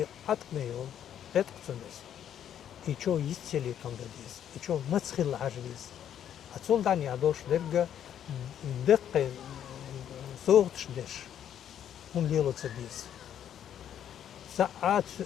عتق ميول اتقتن ديس إيشو يستيلي تندا ديس إيشو متسخل عجبيز أتصول داني عدوش درجة دقة صوغتش ديش هم ليلو تسديس ساعات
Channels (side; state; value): right; quieter; 9.9 dB